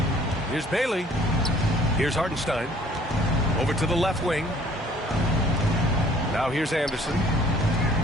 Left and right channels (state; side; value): normal; both; correlation 0.56